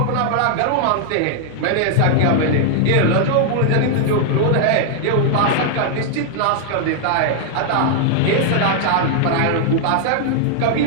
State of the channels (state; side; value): different; both; correlation 0.00